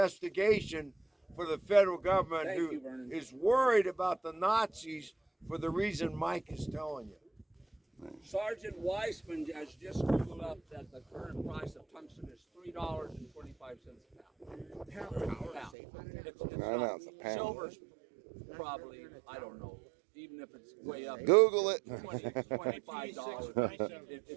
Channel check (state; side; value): drops out; left; at 15.7 s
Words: for the federal government who is worried about the Nazis for the reason Mike is telling you. Sergeant Weissman has just Googled up that the current price of tungsten is $3.25 a pound. It's a pound. Silver's probably, I don't know, even if it's way up. Google it. $25.